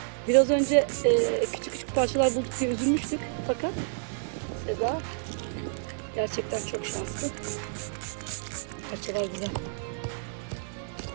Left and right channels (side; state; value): left; silent; digital silence